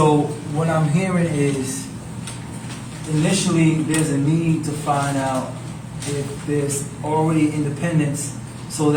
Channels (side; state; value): both; identical; correlation 1.00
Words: what I'm hearing is initially there's a need to find out if there's already independence, so